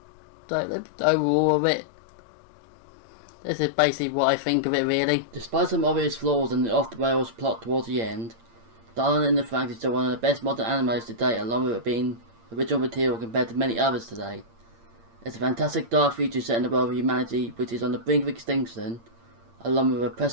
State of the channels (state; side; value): late; left; 8.7 ms